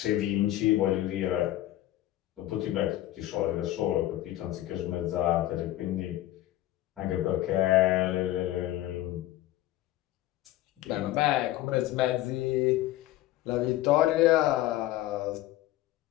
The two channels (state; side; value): quieter; right; 14.9 dB